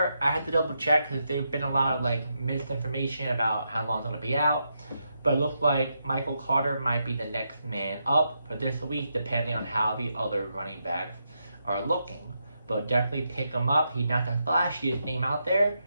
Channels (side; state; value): both; inverted; correlation -0.83